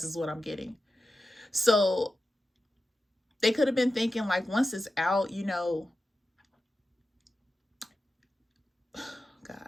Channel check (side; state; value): both; normal; correlation 0.91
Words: is what I'm getting. So they could have been thinking, like, once it's out, you know,